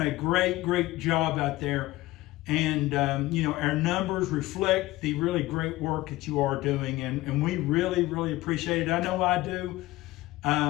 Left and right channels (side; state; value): right; quieter; 18.0 dB